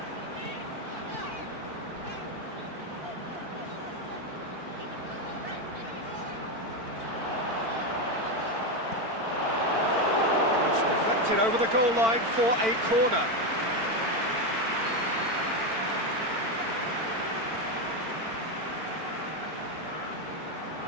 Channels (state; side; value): late; left; 4.5 ms